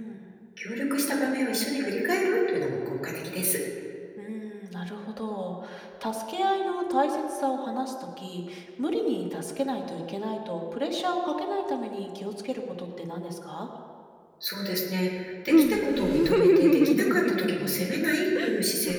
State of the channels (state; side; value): identical; both; correlation 1.00